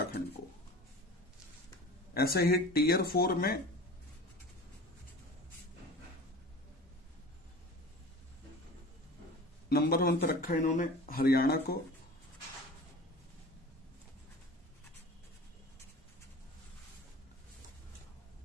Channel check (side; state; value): both; normal; correlation 0.38